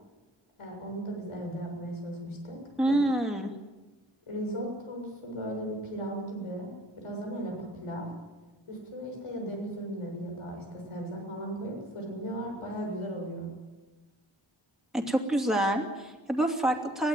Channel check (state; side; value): normal; both; correlation 0.58